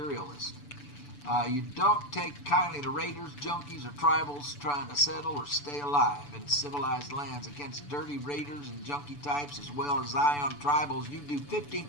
You don't take kindly to raiders, junkies, or tribals trying to settle or stay alive in civilized lands. Against dirty raiders and junkie types as well as Zion tribals, you do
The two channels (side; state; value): right; late; 6.9 ms